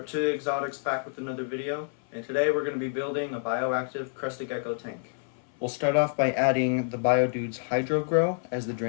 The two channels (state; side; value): silent; right; 56 dB below the other